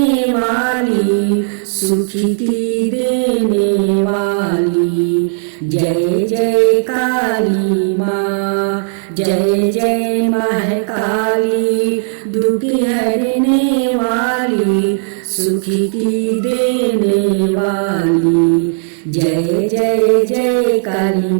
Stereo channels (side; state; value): left; silent; digital silence